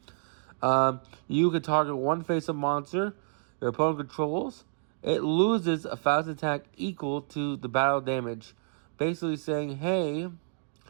you can target one face-up monster your opponent controls. It loses a fast attack equal to the battle damage. Basically saying, hey,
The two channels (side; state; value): left; silent; digital silence